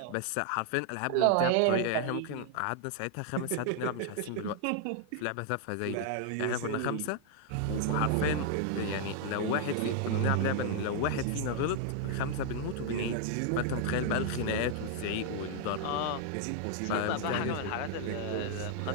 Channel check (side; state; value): both; different; correlation 0.00